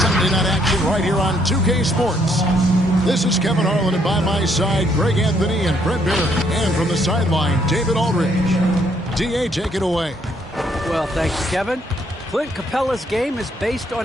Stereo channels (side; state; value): both; normal; correlation 0.69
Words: night action right here on 2K Sports. This is Kevin Harlan, and by my side, Greg Anthony and Brett Barry. And from the sideline, David Aldridge. DA, take it away. Well, thank you, Kevin. Clint Capella's game is based